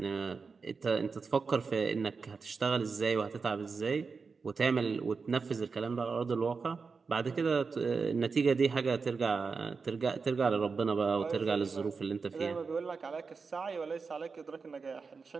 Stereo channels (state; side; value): quieter; left; 4.9 dB